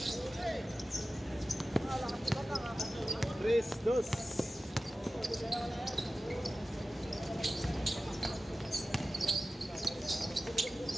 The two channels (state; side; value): normal; both; correlation 0.95